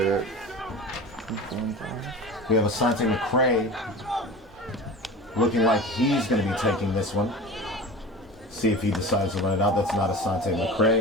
we have Asante McCray looking like he's going to be taking this one. See if he decides to run it out. That's not Asante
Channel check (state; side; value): normal; both; correlation 0.34